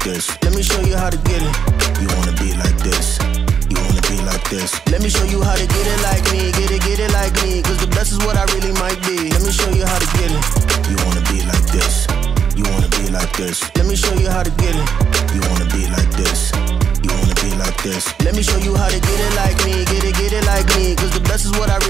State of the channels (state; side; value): quieter; left; 7.2 dB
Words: this. Let me show you how to get it. You wanna be like this. You wanna be like this. Let me show you how to get it like me. Get it like me. Cause the best is what I really might be. Let me show you how to get it. You wanna be like this. You wanna be like this. Let me show you how to get it. You wanna be like this. You wanna be like this. Let me show you how to get it like me. Get it like me. Cause the best is what I